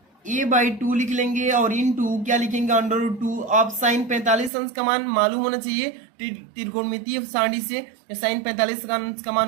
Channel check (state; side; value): drops out; left; at 4.5 s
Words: a/2 लिख लेंगे और इन टू क्या लिखेंगे √2। अब साइन 45 अंश का मान मालूम होना चाहिए त्रिकोणमितीय सारणी से। साइन 45 का अंश का